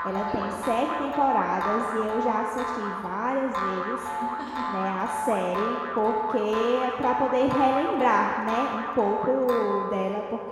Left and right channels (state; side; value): identical; both; correlation 1.00